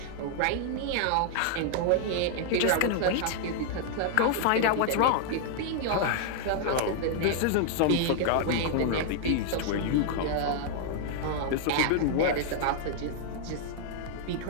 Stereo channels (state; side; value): different; both; correlation 0.00